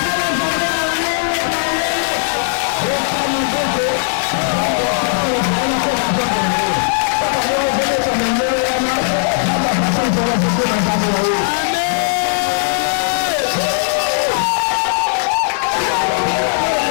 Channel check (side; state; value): right; silent; digital silence